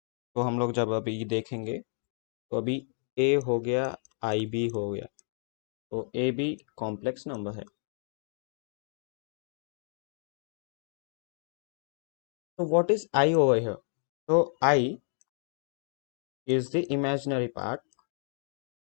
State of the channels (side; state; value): right; silent; digital silence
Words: तो हम लोग जब अभी देखेंगे, तो अभी a हो गया, ib हो गया, तो a भी कॉम्प्लेक्स नंबर है. तो what is i over here? तो i is the imaginary part